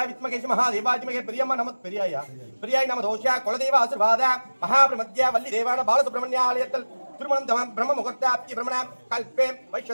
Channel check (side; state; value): both; inverted; correlation -1.00